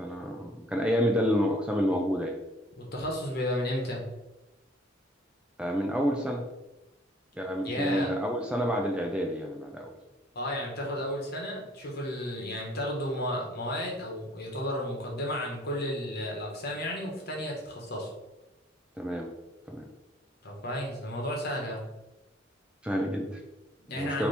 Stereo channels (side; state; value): both; normal; correlation 0.56